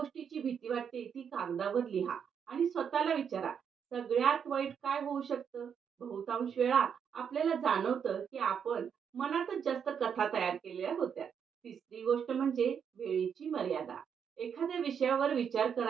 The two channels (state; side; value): quieter; left; 7.4 dB